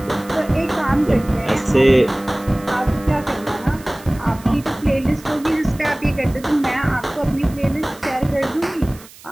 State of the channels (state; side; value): noise; right; hiss, 21 dB below the sound